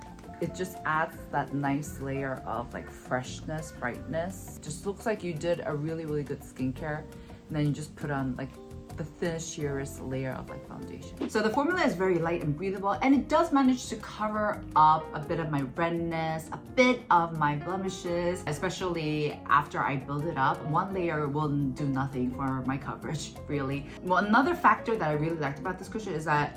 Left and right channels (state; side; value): identical; both; correlation 1.00